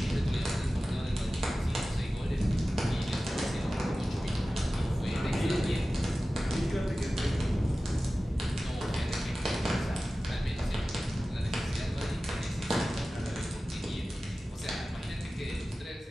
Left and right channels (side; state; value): both; normal; correlation 0.96